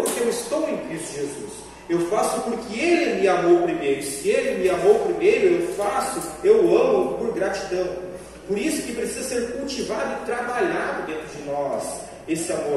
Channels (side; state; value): both; identical; correlation 1.00